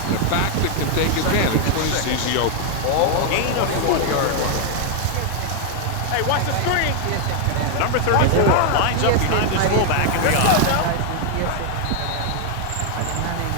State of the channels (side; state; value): both; different; correlation 0.00